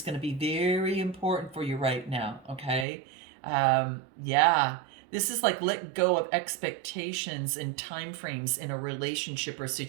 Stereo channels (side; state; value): left; drops out; at 2.9 s